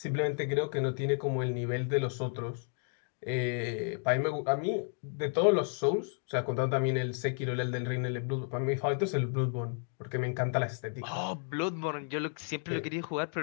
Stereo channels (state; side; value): silent; right; 56 dB below the other